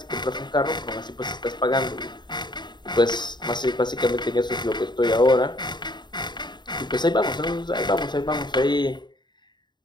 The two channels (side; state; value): right; late; 0.21 ms